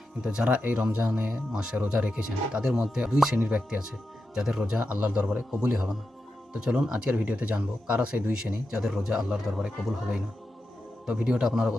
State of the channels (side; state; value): both; normal; correlation 0.89